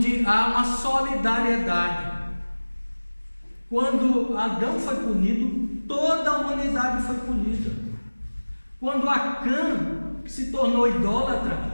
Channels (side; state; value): both; inverted; correlation -1.00